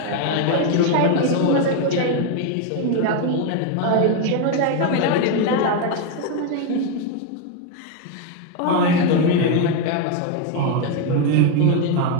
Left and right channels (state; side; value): different; both; correlation 0.01